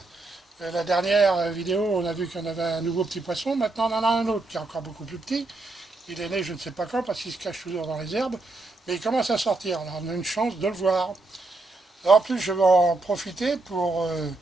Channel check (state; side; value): quieter; left; 3.2 dB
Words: La dernière vidéo, on a vu qu'on avait un nouveau petit poisson. Maintenant, on en a un autre qui est encore beaucoup plus petit. Il est né je ne sais pas quand parce qu'il se cache toujours dans les herbes. Mais il commence à sortir. Alors, on a une chance de le voir. Alors, en plus, je vais en profiter pour